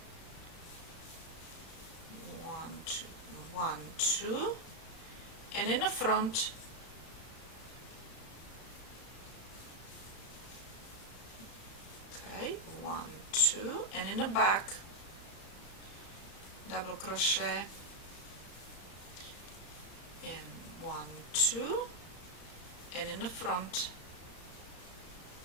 1, 2, 1, 2, and in the front, okay, 1, 2, and in the back, double crochet in 1, 2, and in the front,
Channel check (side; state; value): right; late; 34 ms